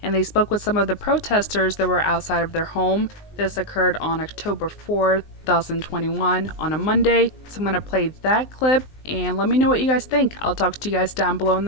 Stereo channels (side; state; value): right; late; 19 ms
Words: and they spoke with some of the protesters that were outside of their home. This occurred on October 4th, 2021 on a Monday. So I'm going to play that clip and let me know what you guys think. I'll talk to you guys down below in